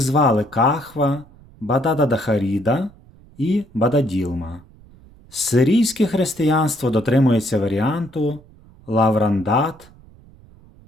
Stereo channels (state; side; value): noise; right; rumble, 25 dB below the sound